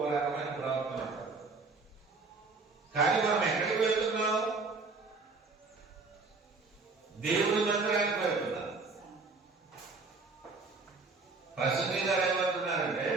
రకమైన ప్రవర్తన ఉంటుంది. కానీ మనం ఎక్కడికి వెళ్తున్నాం? దేవుడి మందిరానికి వెళ్తున్నాం. ప్రసంగి గారు ఏమంటున్నారంటే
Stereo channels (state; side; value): quieter; left; 3.9 dB